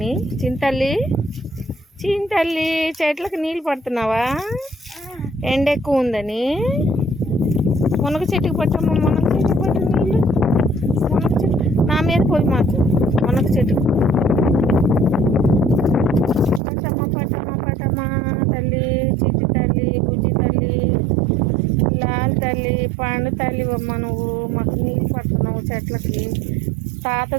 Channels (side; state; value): left; drops out; at 16.6 s